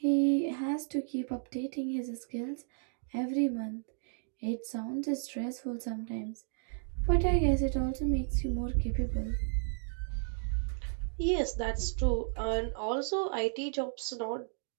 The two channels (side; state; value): left; silent; digital silence